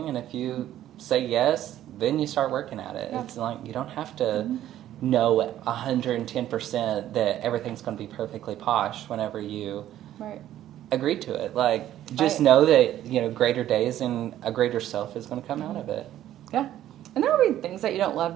and if you say yes, then you start working at it. Yeah. It's like, you don't have to know 110% that everything's going to be perfectly posh whenever you agree to it. Like, just know that, greater days and a greater self is going to come out of it. Yeah. And there will be things that you don't love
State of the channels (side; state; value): left; quieter; 12.5 dB